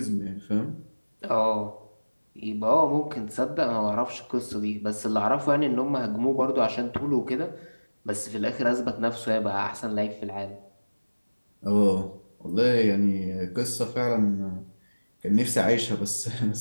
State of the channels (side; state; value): both; inverted; correlation -1.00